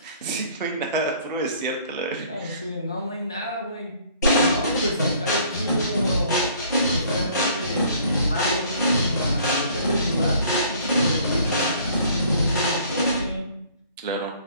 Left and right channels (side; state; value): both; inverted; correlation -0.56